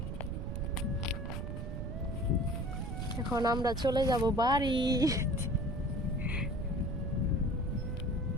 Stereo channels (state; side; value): noise; right; rumble, 5 dB below the sound